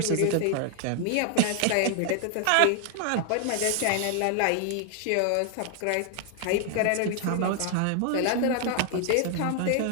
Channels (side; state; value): both; different; correlation 0.00